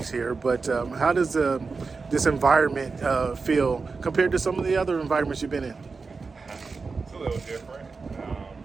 here, but how does this environment feel compared to some of the other environments you've been in? It's a little different.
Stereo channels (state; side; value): quieter; left; 4.5 dB